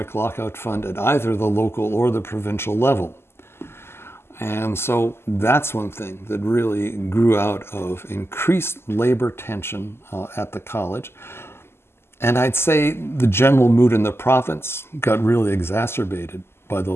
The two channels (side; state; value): right; late; 0.12 ms